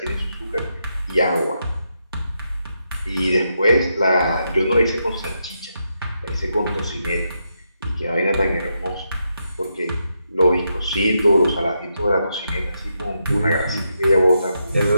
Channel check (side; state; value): both; inverted; correlation -0.83